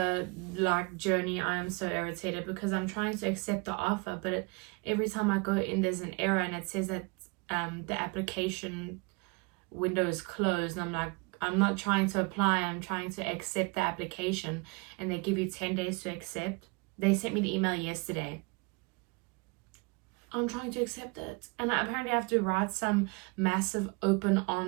journey, I am so irritated because I'm trying to accept the offer, but every time I go in there's an error and it says that the application window is closed, and I'm like, I'm not trying to apply, I'm trying to accept the application, and they give you 10 days to accept. They sent me the email yesterday. I'm trying to accept it, and I apparently have to write some massive open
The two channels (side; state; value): left; quieter; 29.5 dB